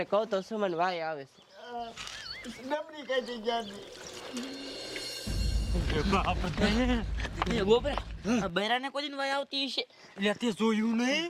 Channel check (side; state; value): both; identical; correlation 1.00